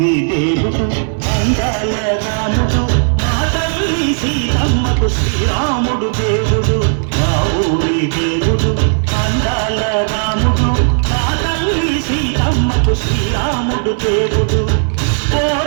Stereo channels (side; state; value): left; silent; 62 dB below the other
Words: దేవుడు అందాల రాముడు, మా తల్లి సీతమ్మకు శ్రీరాముడు దేవుడు. మా ఊరి దేవుడు అందాల రాముడు, మా తల్లి సీతమ్మకు శ్రీరాముడు దేవుడు. ఓ